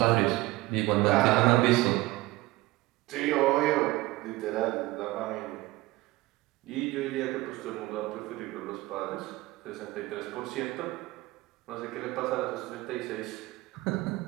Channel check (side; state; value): left; quieter; 19.2 dB